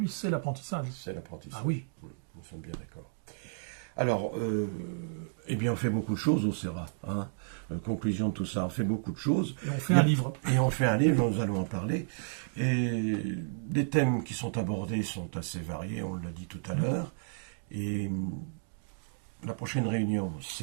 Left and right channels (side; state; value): left; silent; digital silence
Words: c'est l'apprentissage. C'est l'apprentissage. Ah oui. Nous sommes bien d'accord. Alors, on fait beaucoup de choses au CERA. Hein. Conclusion de tout ça, on fait beaucoup de choses. Et on fait un livre. Et on fait un livre, nous allons en parler. Et les thèmes qui sont abordés sont assez variés, on l'a dit tout à l'heure. Et la prochaine réunion,